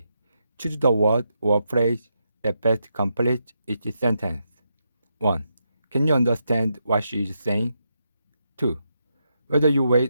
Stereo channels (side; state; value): both; inverted; correlation -0.83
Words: Choose the word or phrase that best completes each sentence. 1. Can you understand what she is saying? 2. Whether you wait